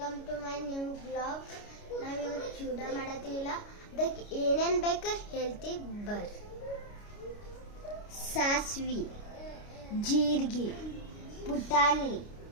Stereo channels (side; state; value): right; late; 29 ms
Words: to my new blog. ನಾವಿವತ್ತು ಚೂಡ ಮಾಡತ್ತೀವಿಲ್ಲ, ಅದಕ್ಕೆ ಏನೇನು ಬೇಕು ಹೇಳ್ತೀವಿ ಬರ್ರಿ. ಸಾಸ್ವಿ, ಜೀರಿಗೆ, ಪುಟಾಣಿ,